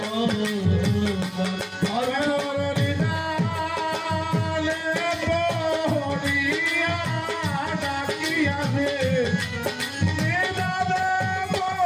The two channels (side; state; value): both; identical; correlation 1.00